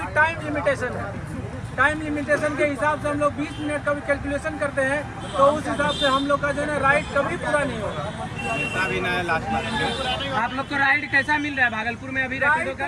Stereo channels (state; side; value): identical; both; correlation 1.00